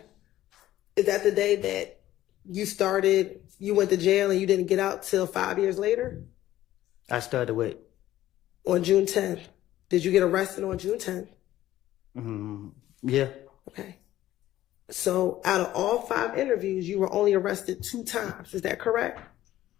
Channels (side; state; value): right; quieter; 14.1 dB